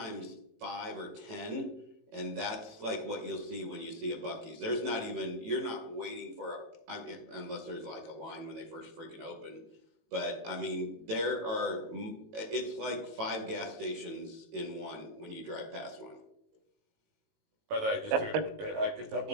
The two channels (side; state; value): left; late; 18 ms